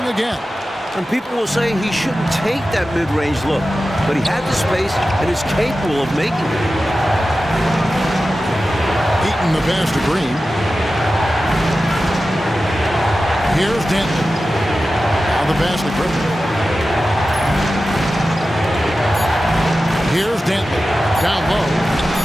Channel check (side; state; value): both; normal; correlation 0.94